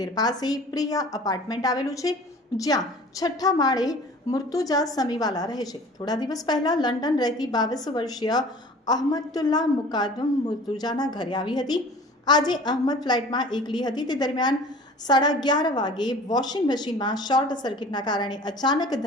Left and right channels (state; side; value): normal; both; correlation 0.44